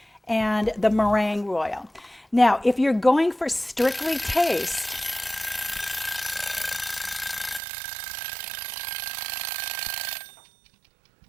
and the meringue royal. Now, if you're going for strictly taste,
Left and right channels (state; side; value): drops out; left; at 7.6 s